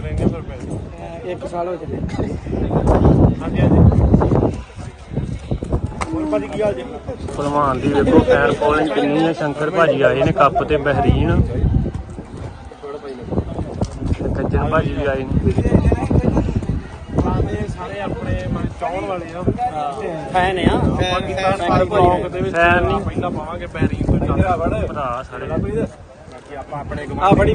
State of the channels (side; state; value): both; identical; correlation 1.00